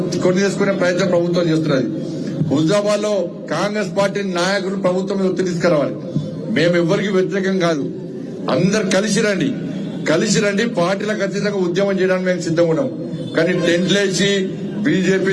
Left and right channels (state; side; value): identical; both; correlation 1.00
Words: కొని చేసుకునే ప్రయత్నం ప్రభుత్వం చేస్తున్నది. హుజాబాద్ లో కాంగ్రెస్ పార్టీ నాయకులు ప్రభుత్వం మీద ఒత్తిడి తీసుకురావాలి. మేము ఎవరికి వ్యతిరేకం కాదు, అందరు కలిసి రండి పార్టీలకు అతీతంగా ఉద్యమం చేయడానికి మేము సిద్ధంగా ఉన్నాం. కానీ టెంట్లేసి